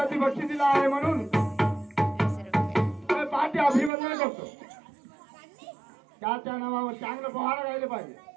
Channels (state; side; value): drops out; left; at 3.9 s